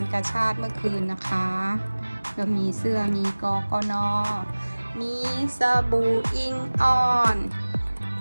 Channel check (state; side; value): inverted; both; correlation -1.00